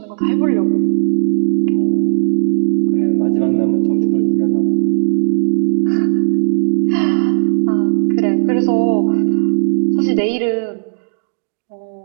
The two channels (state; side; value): silent; left; digital silence